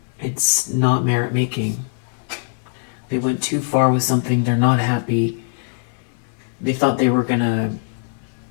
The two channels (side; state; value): right; silent; digital silence